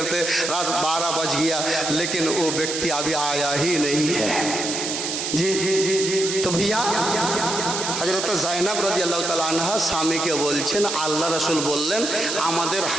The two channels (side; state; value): right; noise; hiss, 3 dB below the sound